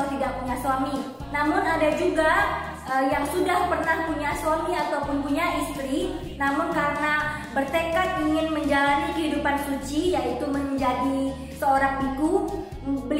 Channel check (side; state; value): both; identical; correlation 1.00